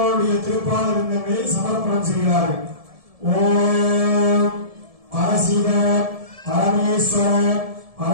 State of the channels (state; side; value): late; left; 1.7 ms